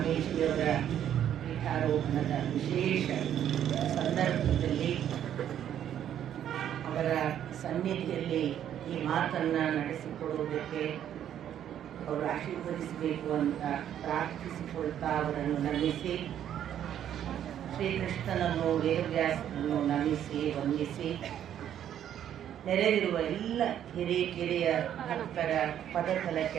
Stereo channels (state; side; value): quieter; left; 10.3 dB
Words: ಪೀಠಾರೋಹಣದ ವಿಶೇಷ ಸಂದರ್ಭದಲ್ಲಿ ಅವರ ಸನ್ನಿಧಿಯಲ್ಲಿ ಈ ಮಾತನ್ನು ನಡೆಸಿಕೊಡುವುದಕ್ಕೆ ಅವರು ಆಶೀರ್ವದಿಸಬೇಕು ಅಂತ ಪ್ರಾರ್ಥಿಸಿಕೊಳ್ತಾ ಅವರನ್ನು ನಮಿಸಿ, ಶ್ರೀಕೃಷ್ಣನನ್ನು ವೇದವ್ಯಾಸನನ್ನು ನಮಿಸಿ ವಂದಿಸಿ, ನೆರೆದಿರುವ ಎಲ್ಲ ಹಿರಿಯ ಭಕ್ತರ